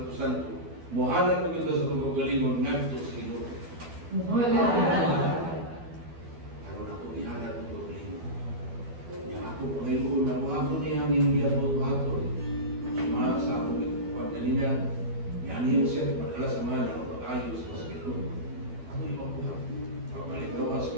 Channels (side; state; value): left; late; 12 ms